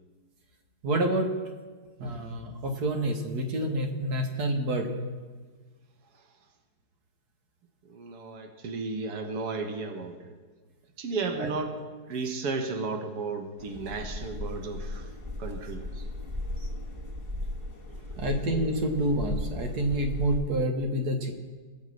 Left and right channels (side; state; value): left; late; 4.7 ms